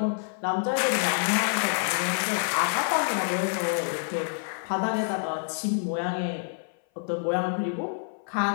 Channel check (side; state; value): right; silent; 57 dB below the other